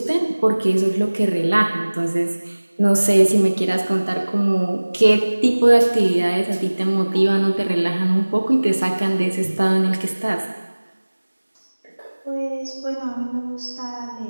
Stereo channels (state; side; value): inverted; both; correlation -1.00